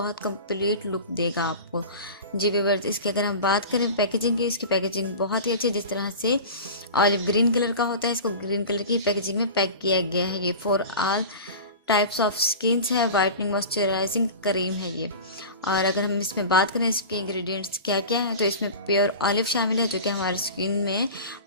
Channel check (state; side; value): inverted; both; correlation -0.33